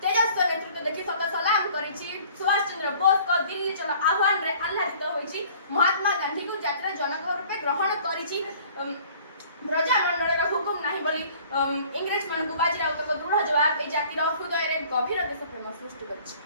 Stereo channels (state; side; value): inverted; both; correlation -0.52